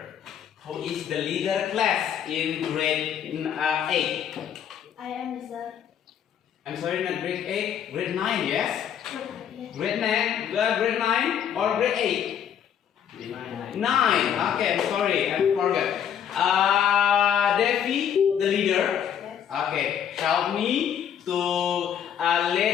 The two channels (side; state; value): right; quieter; 8.9 dB